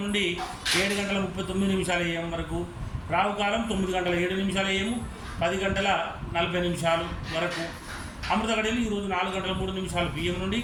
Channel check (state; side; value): identical; both; correlation 1.00